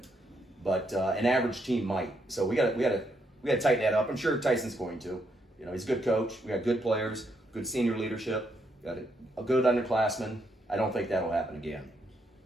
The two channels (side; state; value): both; normal; correlation 0.77